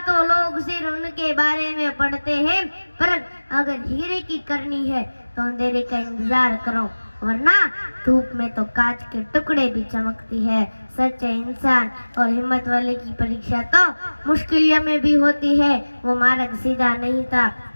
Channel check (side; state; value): both; inverted; correlation -1.00